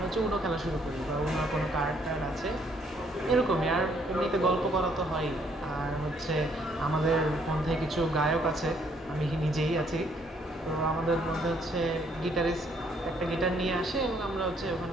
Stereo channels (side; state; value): both; normal; correlation 0.67